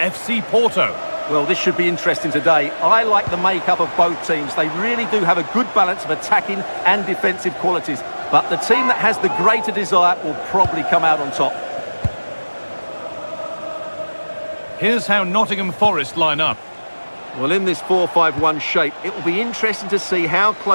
Porto. Well, this should be interesting today. I like the makeup of both teams. They really do have a good balance of attacking and defensive qualities. But the team that has the greater desire will probably come out on top. Here's how Nottingham Forest line up. Well, in this 4-5-1 shape, it will be interesting to see how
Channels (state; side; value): inverted; both; correlation -1.00